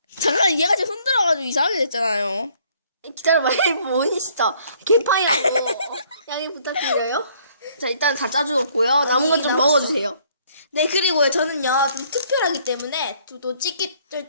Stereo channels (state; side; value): inverted; both; correlation -0.63